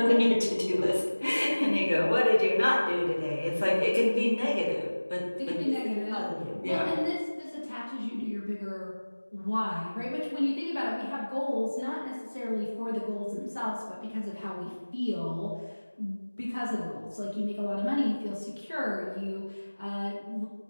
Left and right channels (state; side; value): inverted; both; correlation -1.00